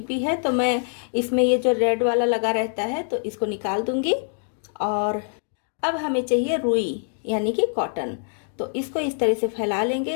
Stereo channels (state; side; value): silent; right; digital silence